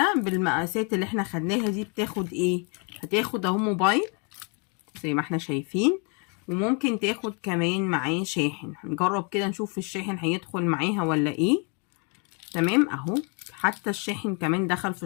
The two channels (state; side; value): quieter; right; 35.9 dB